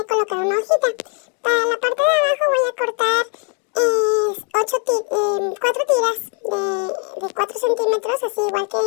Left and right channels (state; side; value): quieter; right; 36.8 dB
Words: a colocar una hojita. Para la parte de abajo voy a cortar 4 tiras de 4 centímetros, así igual que